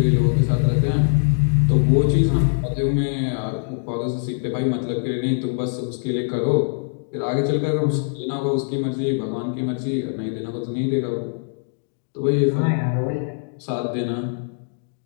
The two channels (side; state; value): right; silent; digital silence